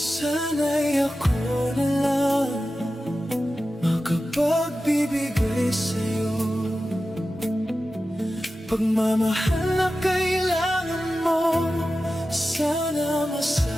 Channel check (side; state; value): both; normal; correlation 0.93